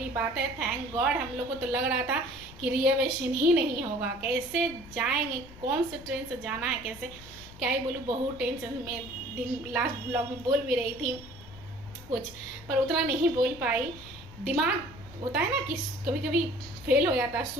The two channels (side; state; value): left; noise; rumble, 17 dB below the sound